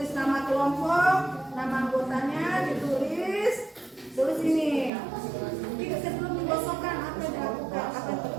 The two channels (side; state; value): left; drops out; at 4.9 s